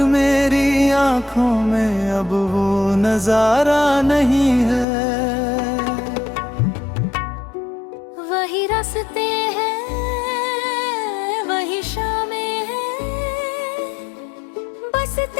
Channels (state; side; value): drops out; right; at 4.9 s